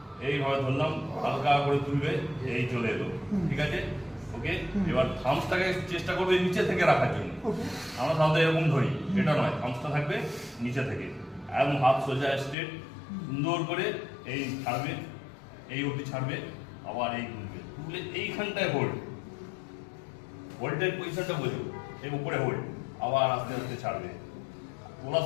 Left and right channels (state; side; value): drops out; right; at 12.6 s